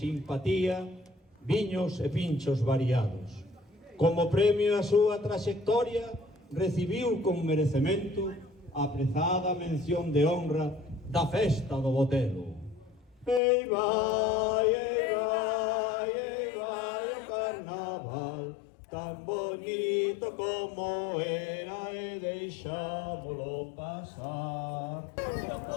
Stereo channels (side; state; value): right; drops out; at 13.4 s